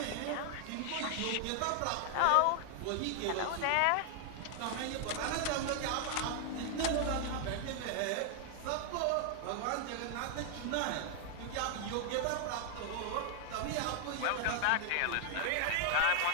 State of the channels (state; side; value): different; both; correlation 0.00